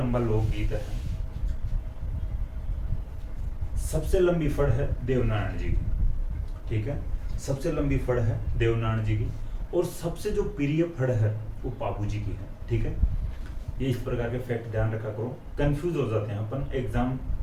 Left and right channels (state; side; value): identical; both; correlation 1.00